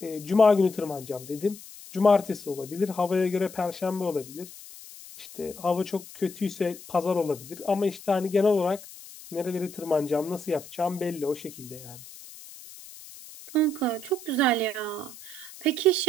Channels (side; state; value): left; noise; hiss, 17 dB below the sound